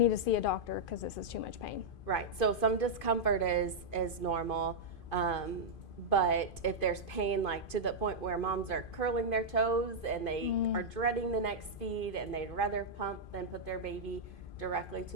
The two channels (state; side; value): late; right; 2.5 ms